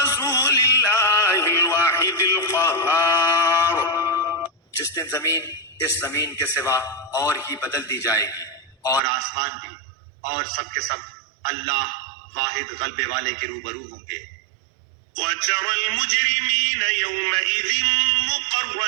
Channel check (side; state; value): left; drops out; at 9.0 s